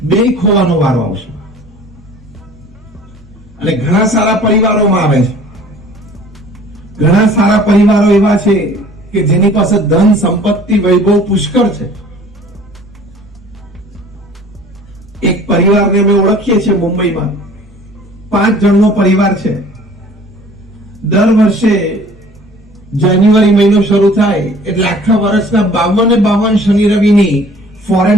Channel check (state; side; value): normal; both; correlation 0.50